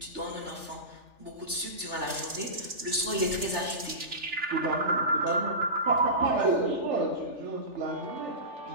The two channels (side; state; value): left; late; 3.4 ms